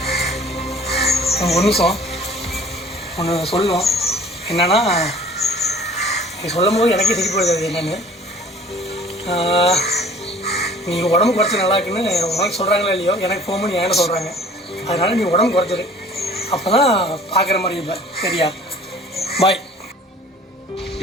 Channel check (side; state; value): both; normal; correlation 0.50